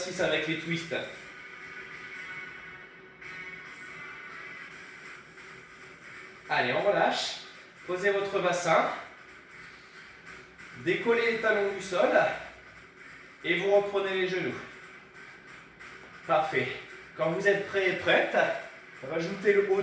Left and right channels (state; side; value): identical; both; correlation 1.00